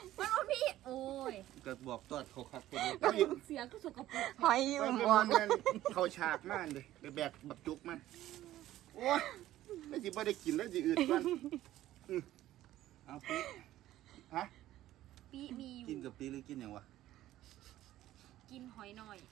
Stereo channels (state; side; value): quieter; left; 14.2 dB